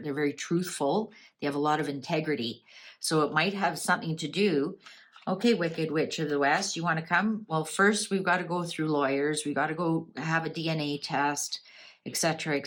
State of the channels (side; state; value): both; identical; correlation 1.00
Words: They're very truthful. They have a lot of integrity. So it might have something to do. Okay, Wicked Witch of the West, you want to come? Well, first we've got to go through lawyers. We've got to go have a DNA test, etc.,